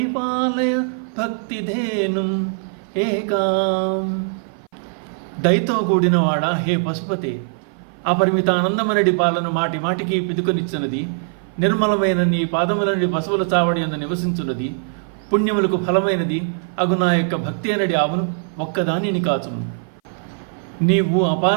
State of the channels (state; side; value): silent; left; 56 dB below the other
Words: భక్తిధేనుం ఏకాం. దయతో కూడినవాడా హే పశుపతే, అపరిమిత ఆనందమనడి పాలన మాటి మాటికి పిదుకొనిచ్చినది, నిర్మలమైన నీ పాదములని పశువుల చావడి యందు నివసించున్నది, పుణ్యములకు ఫలమైనది అగు నా యొక్క భక్తి అనడి ఆవును ఒక్కదానిని కాచుము. నీవు